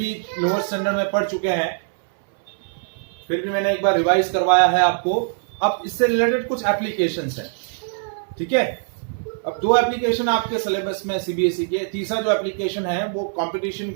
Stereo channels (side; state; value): left; silent; 62 dB below the other